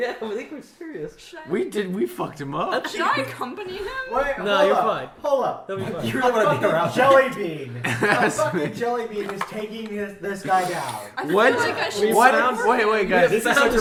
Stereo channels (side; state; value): both; identical; correlation 1.00